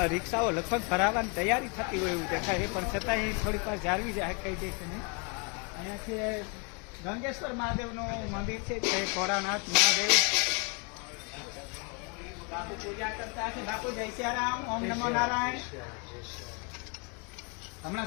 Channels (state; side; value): quieter; right; 33.7 dB